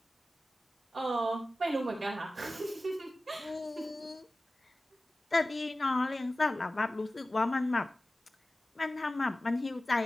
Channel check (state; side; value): normal; both; correlation 0.96